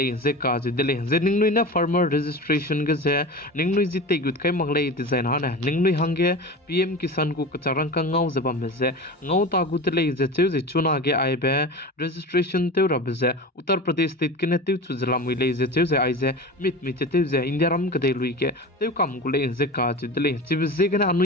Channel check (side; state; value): both; normal; correlation 0.30